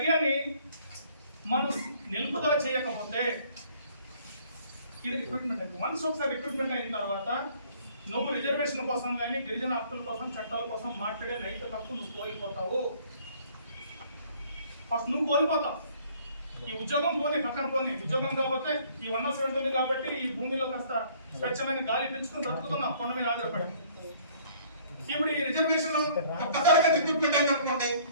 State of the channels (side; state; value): both; inverted; correlation -0.58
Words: మనం నిలుపుదల చేయకపోతే ఇది రిక్రూట్మెంట్ అయింది. వన్స్ ఒకసారి రిక్రూట్మెంట్ అయిన తర్వాత నువ్వు రిజర్వేషన్ కోసం కానీ గిరిజన హక్కుల కోసం చట్టాల కోసం మాట్లాడే నైతిక హక్కు నువ్వు కోల్పోతావు. ఫస్ట్ నువ్వు కోల్పోతావు. ఈ ఉద్యోగం పోనీ పక్కన పోనీ, ఉద్యోగం కాకపోతే ఈ 100% ఉంది కాబట్టి ఈ భూమిలో కాస్త స్వచ్ఛమైన గాలి పెంచుకుని బ్రతుకుతున్నాం కొండ మీద ఆధారపడి. ఇప్పుడు ఈ రిజర్వేషన్ రిక్రూట్మెంట్ అయిందనుకోండి,